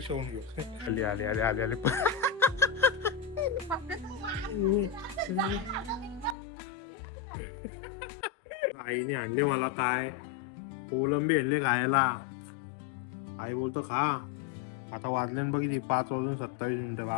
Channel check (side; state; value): right; drops out; at 6.4 s